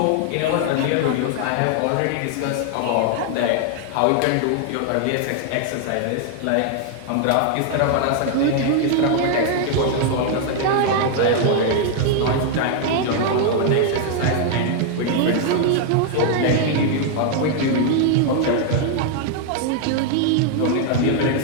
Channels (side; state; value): both; different; correlation 0.00